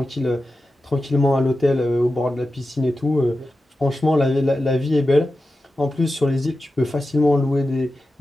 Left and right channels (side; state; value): both; normal; correlation 0.92